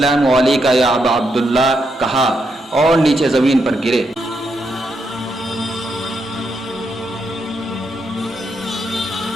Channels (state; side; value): normal; both; correlation 0.81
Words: علیکم یا ابا عبداللہ کہا اور نیچے زمین پر گرے۔